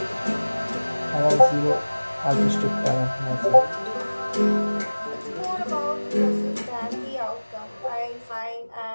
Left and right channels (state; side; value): inverted; both; correlation -1.00